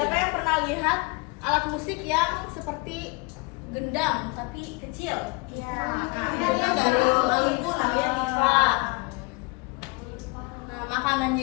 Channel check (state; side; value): quieter; right; 28.0 dB